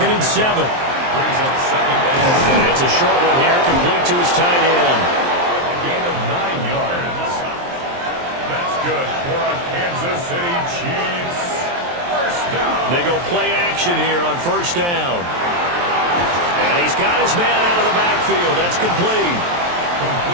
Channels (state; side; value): late; left; 23 ms